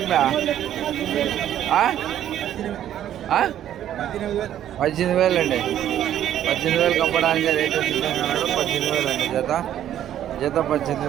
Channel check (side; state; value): left; quieter; 11.2 dB